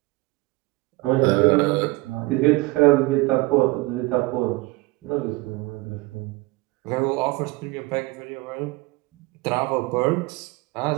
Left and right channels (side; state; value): left; quieter; 22.7 dB